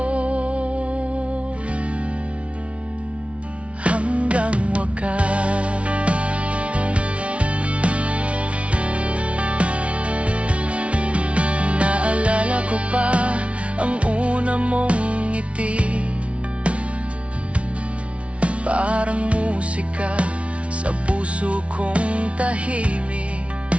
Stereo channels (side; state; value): left; late; 0.062 ms